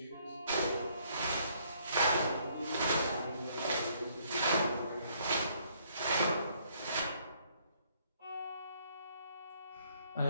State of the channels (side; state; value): both; inverted; correlation -0.66